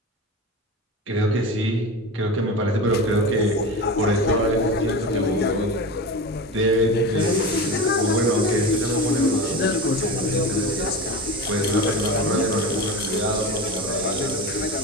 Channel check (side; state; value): both; normal; correlation 0.27